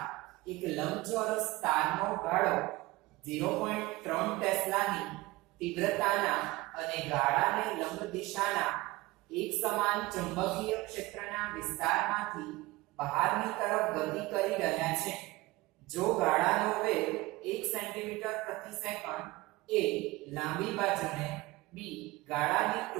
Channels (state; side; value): quieter; left; 20.4 dB